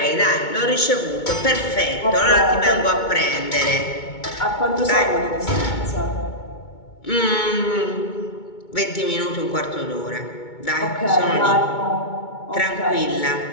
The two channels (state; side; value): late; right; 2.2 ms